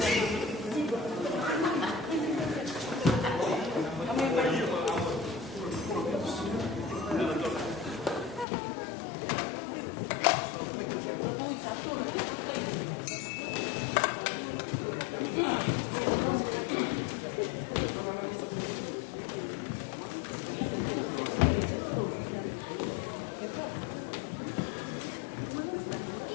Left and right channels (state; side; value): drops out; right; at 8.5 s